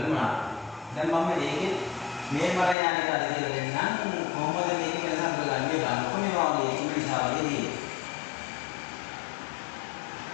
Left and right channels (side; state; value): right; drops out; at 2.8 s